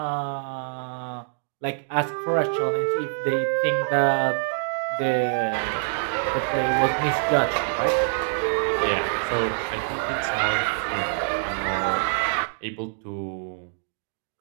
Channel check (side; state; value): left; silent; digital silence